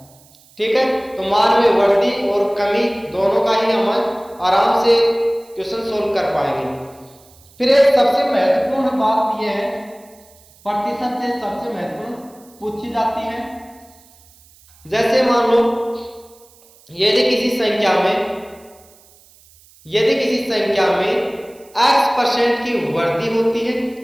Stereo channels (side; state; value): right; noise; hiss, 28 dB below the sound